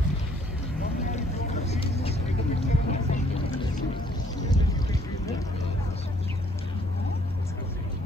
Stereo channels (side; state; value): both; normal; correlation 0.63